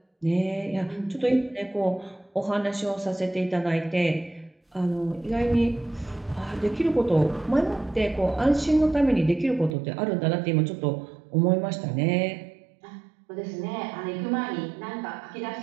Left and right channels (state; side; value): drops out; left; at 9.8 s